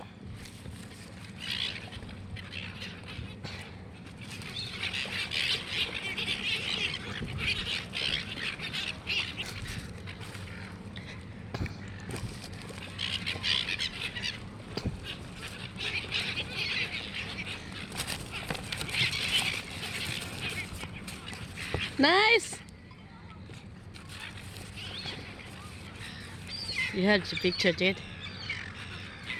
Nice. You have the picture, Jade.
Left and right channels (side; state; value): both; identical; correlation 1.00